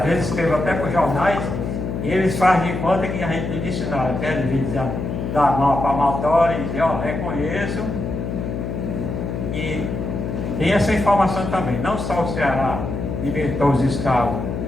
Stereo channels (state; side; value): noise; left; hum, 4 dB below the sound